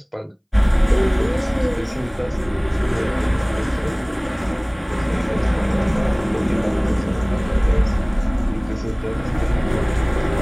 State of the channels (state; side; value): identical; both; correlation 1.00